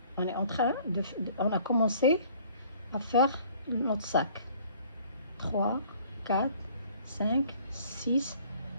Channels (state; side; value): inverted; both; correlation -0.55